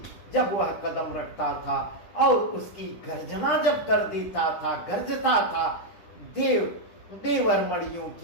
जब वह कदम रखता था और उसकी गर्जना जब कर देता था, गरजता था, देवर मणियों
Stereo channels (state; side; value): late; right; 10 ms